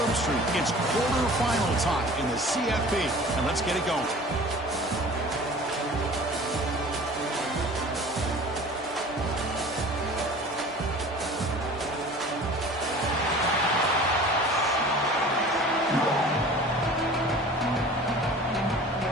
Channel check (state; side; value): normal; both; correlation 0.43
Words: It's quarterfinal time in the CFP, and let's get it going.